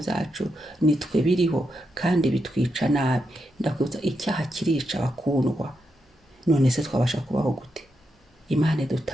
byacu nitwe biriho, kandi bitwica nabi. Ndakwibutsa, icyaha kirica bakundwa. None se twabasha kubaho gute? Imana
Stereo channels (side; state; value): both; normal; correlation 0.84